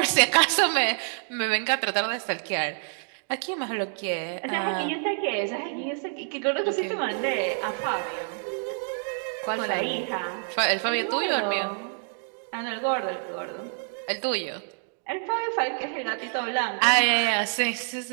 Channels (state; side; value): silent; left; 60 dB below the other